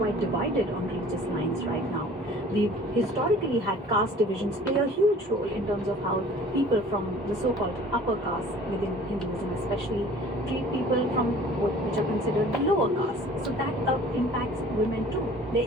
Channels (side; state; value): both; normal; correlation 0.48